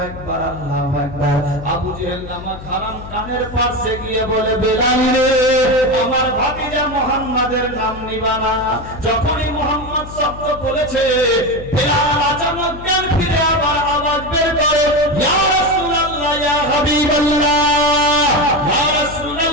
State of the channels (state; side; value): noise; left; hum, 13 dB below the sound